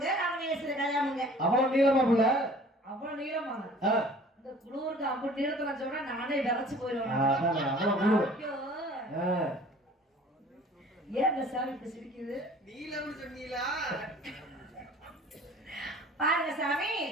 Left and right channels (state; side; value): normal; both; correlation 0.49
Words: ராமநேஸ்வர கல்யாணமுங்க. அவ்வளவு நீளமா புள்ள அவ்வளவு நீளமாங்க. இந்த குளூருக்கு அப்படி நீளத்துல சொன்னா நானே விரைச்சு போயிடுவேன். ஏன் இந்த சாமி இப்படி சிரிக்குது? நீலம்னு சொன்னீங்களா? பாருங்க சாமி